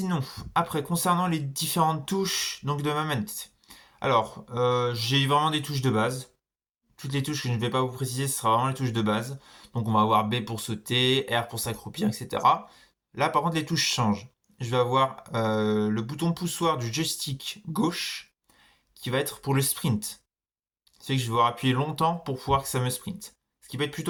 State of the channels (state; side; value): identical; both; correlation 1.00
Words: après, concernant les différentes touches donc de ma manette. Alors, j'ai vraiment des touches de base. Toutes les touches que je ne vais pas vous préciser, ce sera vraiment les touches de base. Donc on va avoir B pour sauter, R pour s'accroupir, etc. Là, par contre, les touches changent. Je vais avoir le bouton poussoir du joystick gauche qui va être pour le sprint. C'est que je vais devoir appuyer longtemps pour pouvoir que ça me sprint. Ce qui peut être